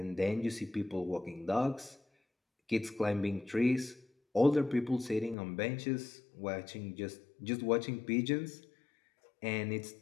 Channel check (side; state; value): right; drops out; at 5.4 s